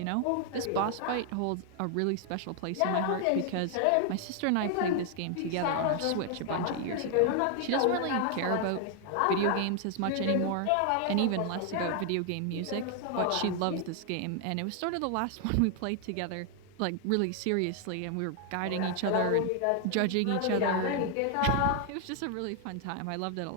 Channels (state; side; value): different; both; correlation 0.00